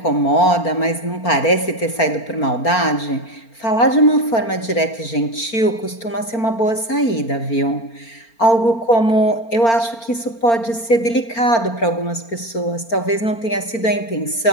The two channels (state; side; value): late; right; 4.4 ms